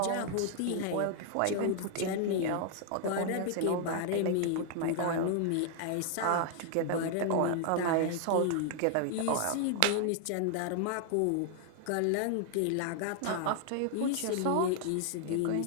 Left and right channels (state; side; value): different; both; correlation 0.00